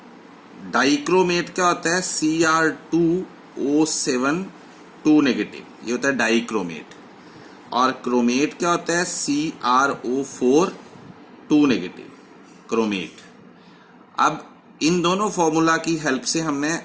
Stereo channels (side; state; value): both; identical; correlation 1.00